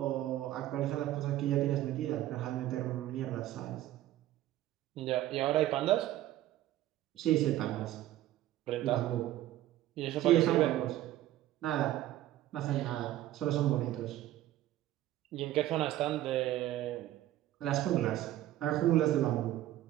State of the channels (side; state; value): left; quieter; 14.1 dB